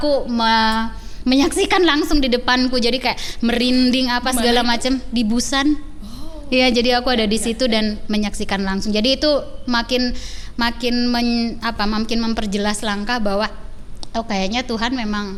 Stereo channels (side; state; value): both; identical; correlation 1.00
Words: menyaksikan langsung di depanku, jadi kayak merinding apa segala macam di Busan. Iya, jadi aku ada di situ dan menyaksikan langsung. Jadi itu makin memperjelas langkah bahwa kayaknya Tuhan